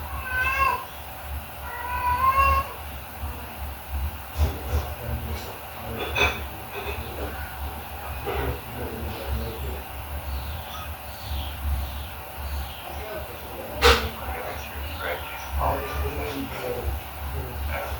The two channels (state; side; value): identical; both; correlation 1.00